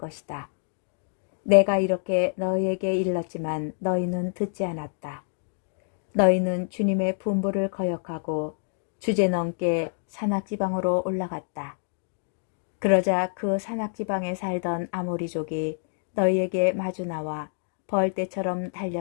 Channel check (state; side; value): silent; right; 60 dB below the other